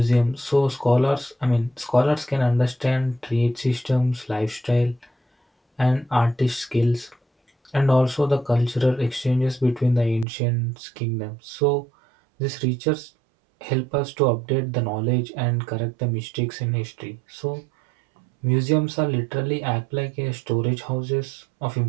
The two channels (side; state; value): left; drops out; at 10.2 s